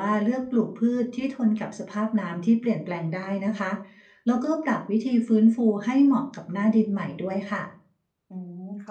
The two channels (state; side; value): identical; both; correlation 1.00